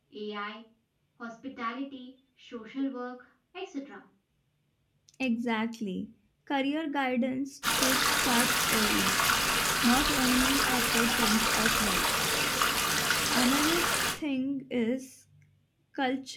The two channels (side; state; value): both; identical; correlation 1.00